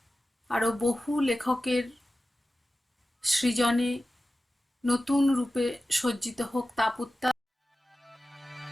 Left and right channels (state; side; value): normal; both; correlation 0.94